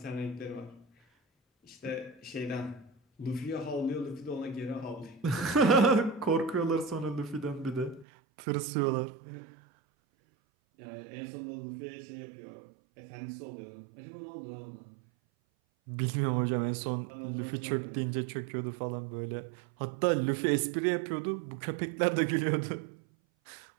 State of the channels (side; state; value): left; drops out; at 8.1 s